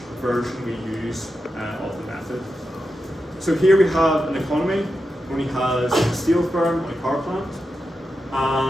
version we use of the method. So here we have an economy only has a steel firm and a car plant,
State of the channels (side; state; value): both; normal; correlation 0.89